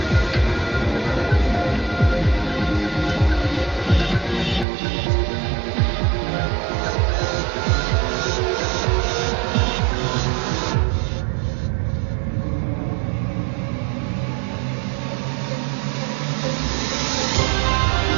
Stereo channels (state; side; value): drops out; left; at 4.7 s